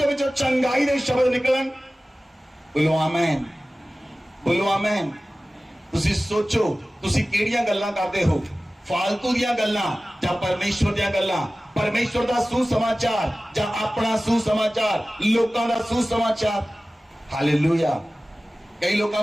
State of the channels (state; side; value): normal; both; correlation 0.97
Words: ਵਿੱਚੋਂ ਚੰਗਾਈ ਦੇ ਸ਼ਬਦ ਨਿਕਲਣ। ਬੋਲੋ ਆਮੇਨ, ਬੋਲੋ ਆਮੇਨ। ਤੁਸੀਂ ਸੋਚੋ, ਤੁਸੀਂ ਕਿਹੜੀਆਂ ਗੱਲਾਂ ਕਰਦੇ ਹੋ, ਫਾਲਤੂ ਦੀਆਂ ਗੱਲਾਂ ਜਾਂ ਪਰਮੇਸ਼ਵਰ ਦੀਆਂ ਗੱਲਾਂ, ਪਰਮੇਸ਼ਵਰ ਦਾ ਸੁਸਮਾਚਾਰ ਜਾਂ ਆਪਣਾ ਸੁਸਮਾਚਾਰ, ਲੋਕਾਂ ਦਾ ਸੁਸਮਾਚਾਰ। ਹਾਲੇਲੂਇਆ। ਕਈ ਲੋਕਾਂ